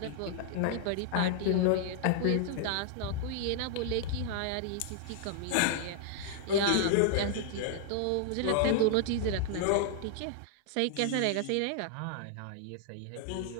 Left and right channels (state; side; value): different; both; correlation -0.01